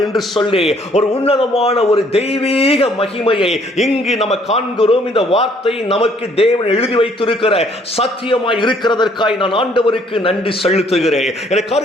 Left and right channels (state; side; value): normal; both; correlation 0.63